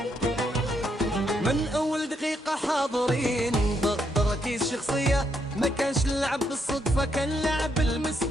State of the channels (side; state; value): both; normal; correlation 0.77